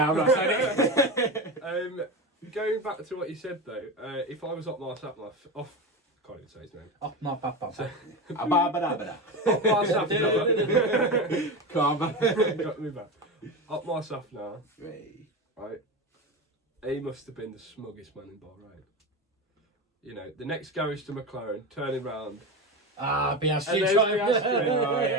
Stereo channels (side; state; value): both; normal; correlation 0.21